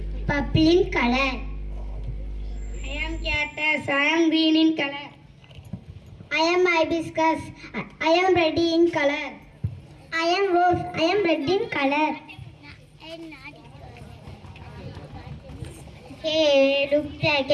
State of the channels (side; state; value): both; identical; correlation 1.00